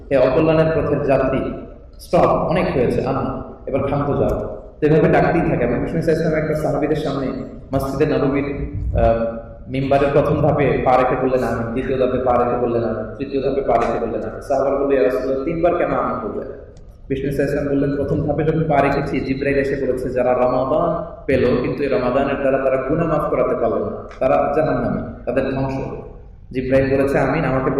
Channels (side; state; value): both; identical; correlation 1.00